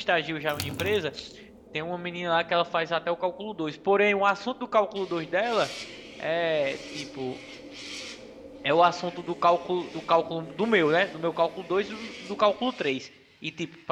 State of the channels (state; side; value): identical; both; correlation 1.00